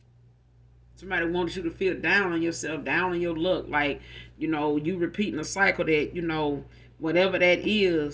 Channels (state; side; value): identical; both; correlation 1.00